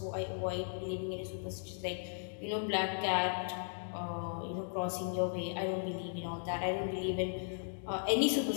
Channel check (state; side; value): silent; right; digital silence